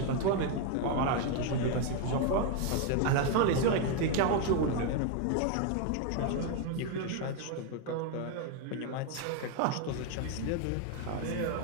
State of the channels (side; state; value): both; different; correlation 0.01